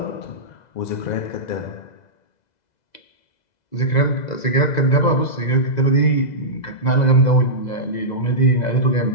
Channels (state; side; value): late; right; 2.0 ms